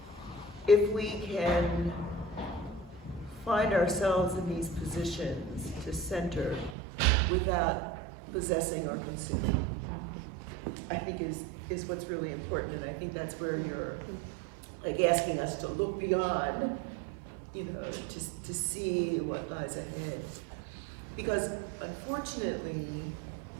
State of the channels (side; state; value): left; drops out; at 6.8 s